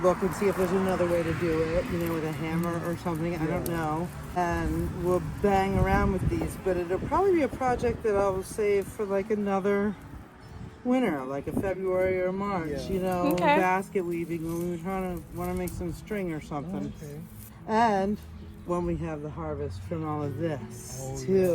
and see if there's another way to do it, you know, with a hammer or something, I don't know. And we'll bang around with these, but it'll probably be a project that I'll save for like another winter, like a February or March, you know, Okay. basket weaving when we want to make some string or something. And when we have the harvest from all of this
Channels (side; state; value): both; identical; correlation 1.00